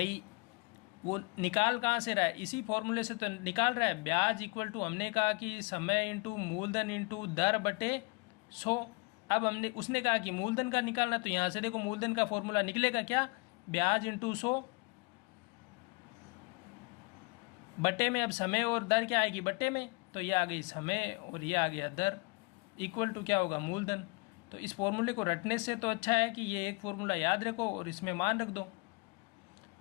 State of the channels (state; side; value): quieter; right; 29.7 dB